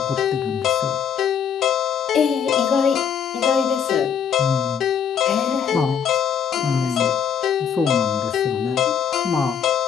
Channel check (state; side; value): quieter; right; 7.8 dB